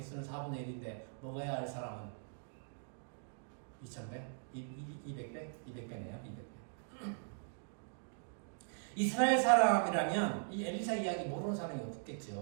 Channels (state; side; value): silent; left; digital silence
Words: 4분의 1인데 먹어야 할 사람은 2,100? 200배? 200배네요. 200배. 이스라엘 사람이라면 이 엘리사 이야기 모르는 사람이